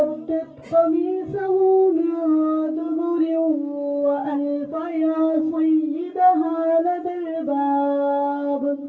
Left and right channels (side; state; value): both; identical; correlation 1.00